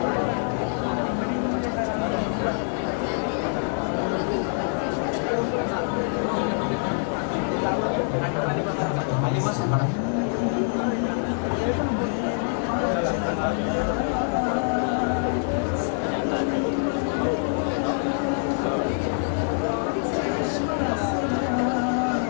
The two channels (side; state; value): right; silent; 62 dB below the other